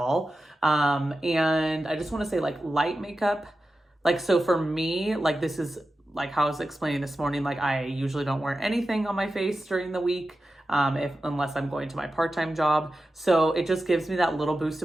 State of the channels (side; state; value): both; normal; correlation 0.92